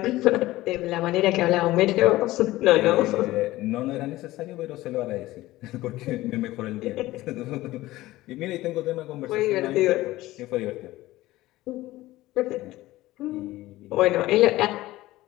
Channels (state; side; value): quieter; right; 17.3 dB